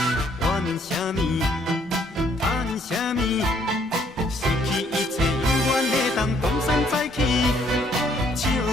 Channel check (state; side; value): normal; both; correlation 0.66